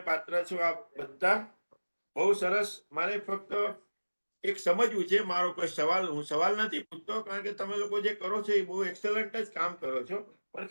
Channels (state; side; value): inverted; both; correlation -1.00